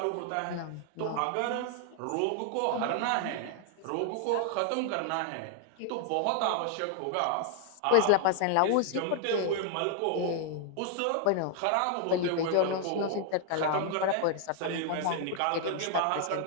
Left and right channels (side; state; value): both; different; correlation 0.00